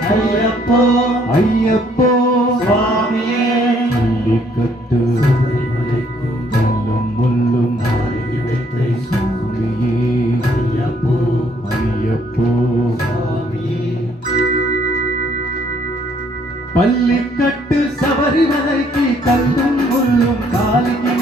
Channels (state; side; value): normal; both; correlation 0.66